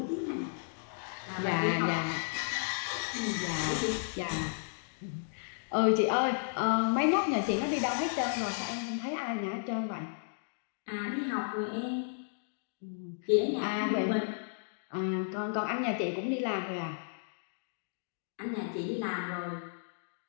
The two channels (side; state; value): right; silent; digital silence